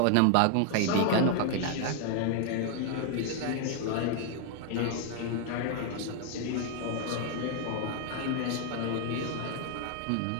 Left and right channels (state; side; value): different; both; correlation 0.00